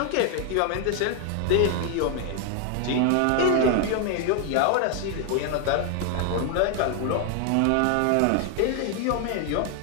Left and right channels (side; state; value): both; different; correlation 0.01